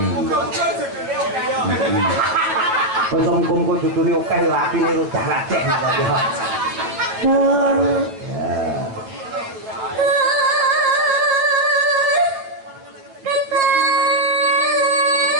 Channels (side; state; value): left; late; 9.3 ms